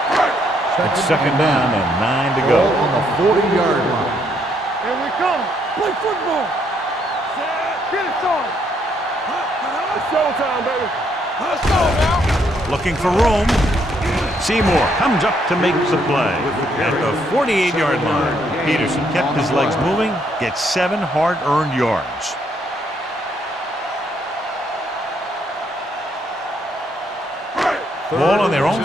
It's 2nd down and 9 to go. On the 40-yard line. Here we come. Play football. Get it started. It's showtime, baby. Let's go now. Looking for room. Seymour comes up to make the play at the 48-yard line. Peterson kept his legs moving, gets 7 hard-earned yards. Ball on their own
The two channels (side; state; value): both; normal; correlation 0.72